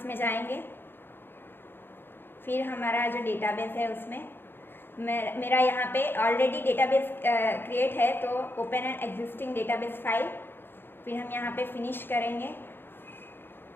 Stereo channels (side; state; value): right; late; 0.10 ms